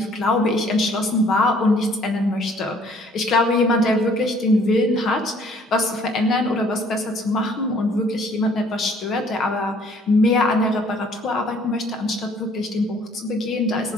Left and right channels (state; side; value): normal; both; correlation 0.59